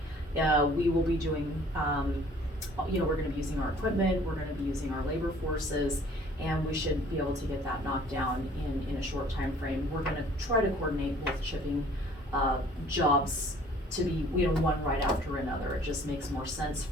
We will be doing, we're gonna be using our equipment, we're gonna be using our labor forces, and we should be able to get that knocked down in a short time frame. We're gonna try to coordinate both chipping jobs to be, one right after another. It just makes more sense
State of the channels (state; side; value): normal; both; correlation 0.54